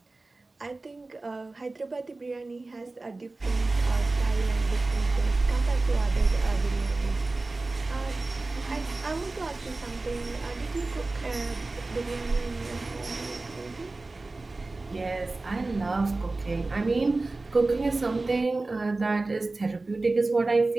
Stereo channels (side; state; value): left; quieter; 3.3 dB